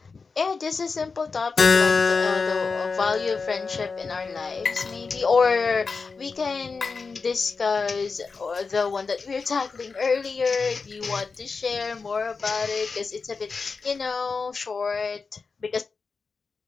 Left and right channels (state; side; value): quieter; right; 4.7 dB